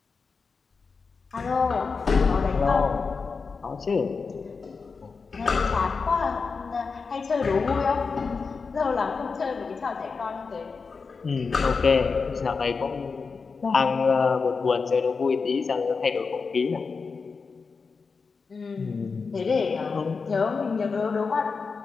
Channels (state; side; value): quieter; right; 4.9 dB